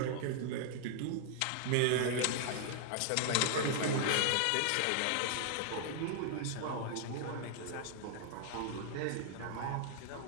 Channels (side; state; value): both; different; correlation 0.00